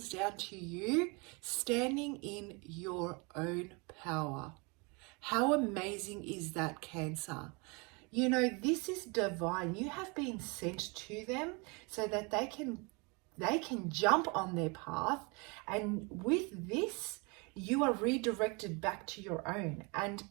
down to you standing in your own power. How amazing is that, Cancer? This is divine. You have been sent to them so that they can jump on their path, and with this you are redirected back to your own, and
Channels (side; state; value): left; quieter; 29.9 dB